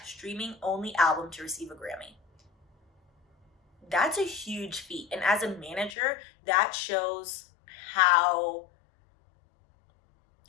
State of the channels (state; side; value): drops out; right; at 5.9 s